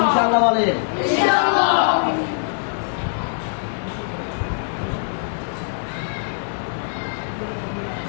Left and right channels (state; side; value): silent; right; 64 dB below the other